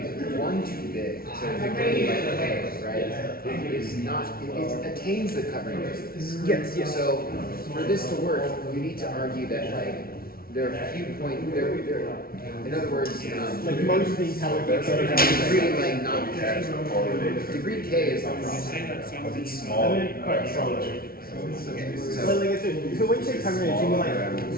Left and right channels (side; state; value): right; late; 0.43 ms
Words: 1 too big, so degree like k, right, is not, it attains the covering radius. Yes, yes. So for this to work, you need to argue that like there are few points, in other words, Like most of these have degree like not k. Degree k is the problem. So when you say covering radius, you mean like,